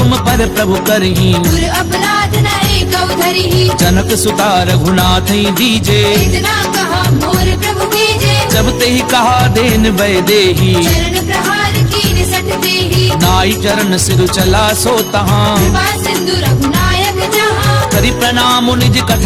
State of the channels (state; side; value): identical; both; correlation 1.00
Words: पर प्रभु करही, गुर अपराध न एकौ धरिहि। जनक सुता रघुनाथ दीजे। इतना कहा मोर प्रभु कीजे। जब ते ही कहा देन वै देही, चरण प्रहार कीन सठ देहि। नाई चरण सिर चला सो तहाँ, कृपा सिंधु रघुनायक जहाँ। करि प्रणाम निज